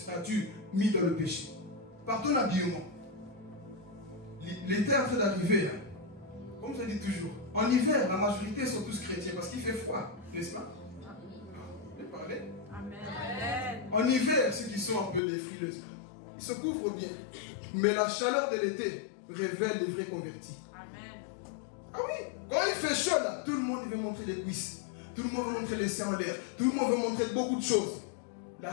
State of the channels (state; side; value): drops out; right; at 15.2 s